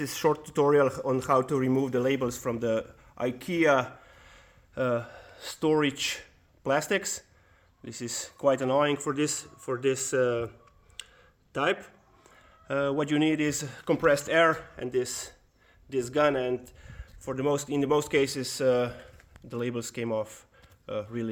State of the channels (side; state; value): both; identical; correlation 1.00